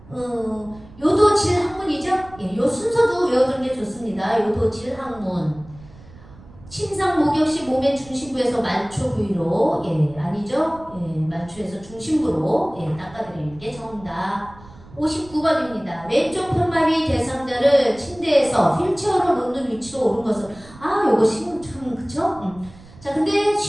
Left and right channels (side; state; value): right; noise; rumble, 21 dB below the sound